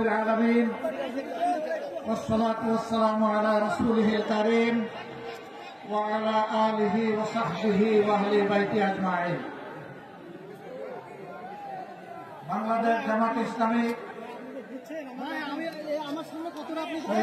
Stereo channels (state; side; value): identical; both; correlation 1.00